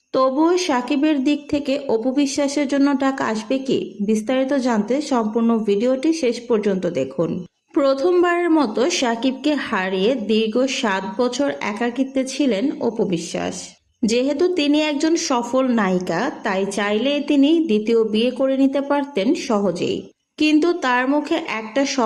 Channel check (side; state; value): both; identical; correlation 1.00